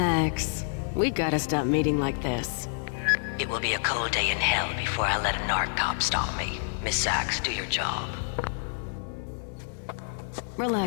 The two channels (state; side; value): silent; right; 59 dB below the other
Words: we gotta stop meeting like this. It will be a cold day in hell before I let a narc cop stop me. Miss Sachs, do your job.